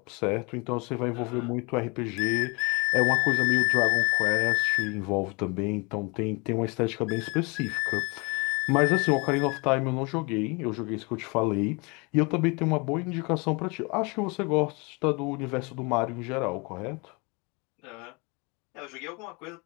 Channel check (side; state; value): right; quieter; 29.2 dB